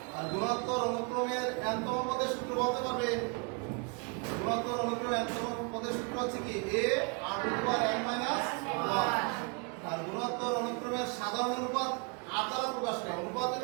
আর গুণোত্তর অনুক্রমের এনতম পদের সূত্র বলতে পারবে? গুণোত্তর অনুক্রমের এনতম পদের সূত্র হচ্ছে কি? a r to the power n minus 1। আর গুণোত্তর অনুক্রমের সাধারণ অনুপাত r দ্বারা প্রকাশ করে। অনুপাত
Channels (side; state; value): left; quieter; 33.5 dB